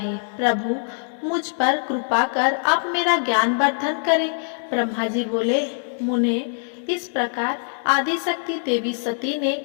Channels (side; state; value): right; silent; digital silence